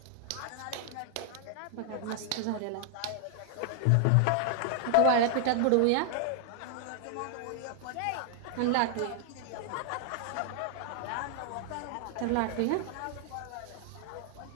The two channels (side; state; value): both; different; correlation 0.00